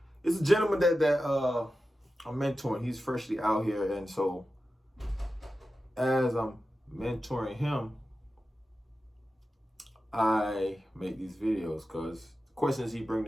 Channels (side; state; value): both; normal; correlation 0.92